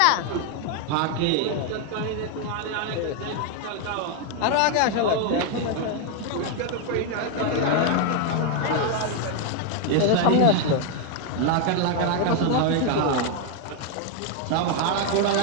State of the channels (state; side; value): different; both; correlation 0.01